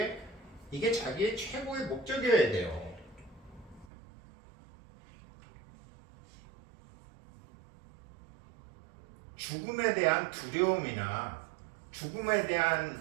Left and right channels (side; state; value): left; drops out; at 3.9 s